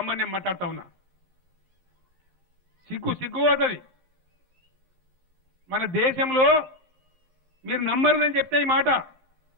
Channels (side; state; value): left; late; 11 ms